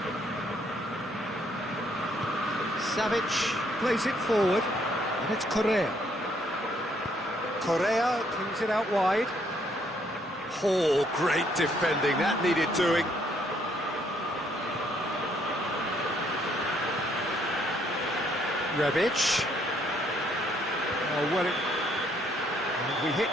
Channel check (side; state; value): both; normal; correlation 0.69